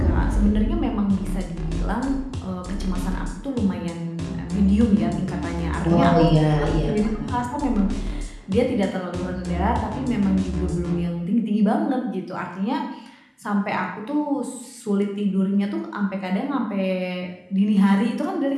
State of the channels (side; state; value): both; identical; correlation 1.00